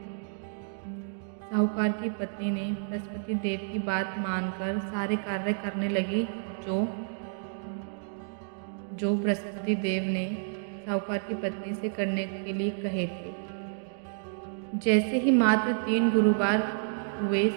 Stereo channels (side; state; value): left; silent; digital silence